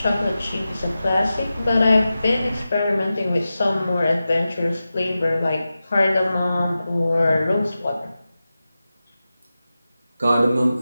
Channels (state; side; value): inverted; both; correlation -0.94